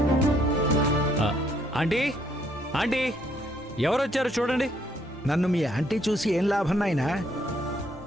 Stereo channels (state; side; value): normal; both; correlation 0.69